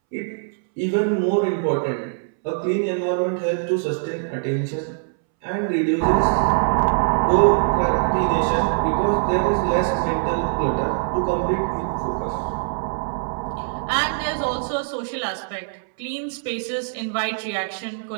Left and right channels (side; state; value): left; silent; 64 dB below the other